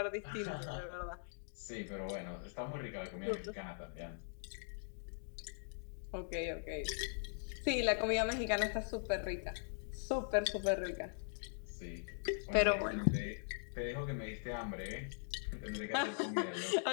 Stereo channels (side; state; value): right; silent; digital silence